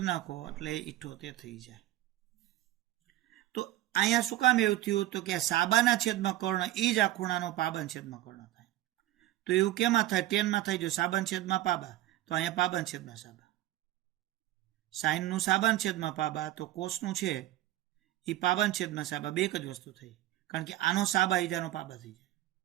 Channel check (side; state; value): left; quieter; 15.1 dB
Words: નાખો એટલે 78 થઈ જાય. તો અહીંયા શું કામ એવું થયું? તો કે આ સાબાના છેદમાં કર્ણ એ જ આ ખૂણાનો પાબન છેદમાં કર્ણ થાય. તો એવું કેમાં થાય? ટેનમાં થાય. જો સાબન છેદમાં પાબા તો અહીંયા પાબન છેદમાં સાબા. સાઈનનું સાબન છેદમાં પાબા તો કોસનું છે એ પાબન છેદમાં સાબા, બે જ વસ્તુ થઈ, કારણ કે આનો સાબા ઈજાનો પાબા થઈ જાય.